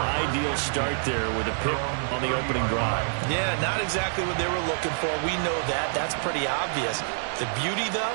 start there with a pick on the opening drive. Yeah, not exactly what they were looking for. We know that. That's pretty obvious. The beauty,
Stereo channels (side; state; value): left; silent; digital silence